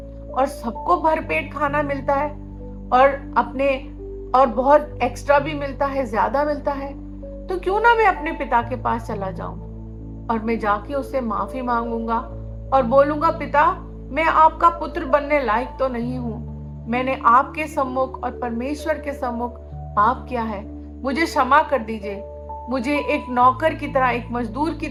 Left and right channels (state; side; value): identical; both; correlation 1.00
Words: और सबको भरपेट खाना मिलता है और बहुत एक्स्ट्रा भी मिलता है, ज्यादा मिलता है। तो क्यों ना मैं अपने पिता के पास चला जाऊं और मैं जाके उससे माफी मांगूंगा और बोलूंगा, पिता मैं आपका पुत्र बनने लायक तो नहीं हूं, मैंने आपके सम्मुख और परमेश्वर के सम्मुख पाप किया है, मुझे क्षमा कर दीजिए, मुझे एक नौकर की तरह, एक मजदूर की